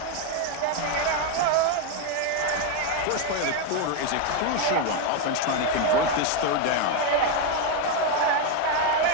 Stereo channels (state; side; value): different; both; correlation 0.02